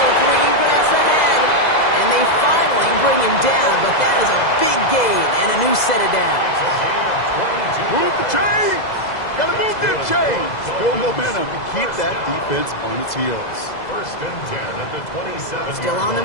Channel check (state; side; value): late; right; 2.0 ms